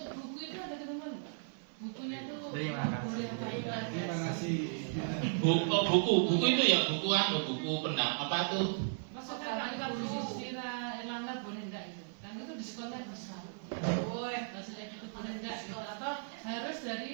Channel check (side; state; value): left; silent; digital silence